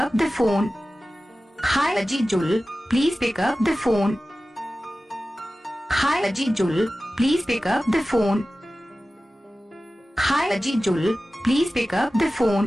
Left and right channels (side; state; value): both; normal; correlation 0.96